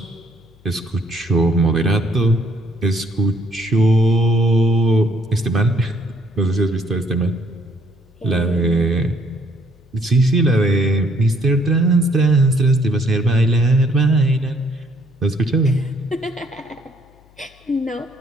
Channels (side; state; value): left; noise; hum, 29 dB below the sound